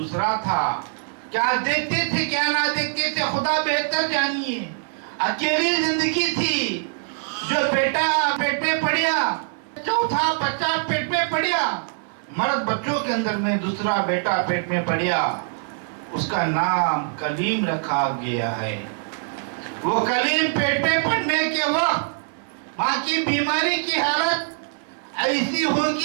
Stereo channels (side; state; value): left; silent; 57 dB below the other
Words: تھا۔ کیا دیکھتے تھے کیا نہ دیکھتے تھے خدا بہتر جانیے۔ اکیلی زندگی تھی، جو بیٹا پیٹ میں پڑیا، چوتھا بچہ پیٹ میں پڑیا، مرد بچوں کے اندر میں دوسرا بیٹا پیٹ میں پڑیا، اس کا نام کلیم رکھا گیا ہے۔ وہ کلیم پیٹ میں پڑنے کے وقت ماں کی بیماری کی حالت ایسی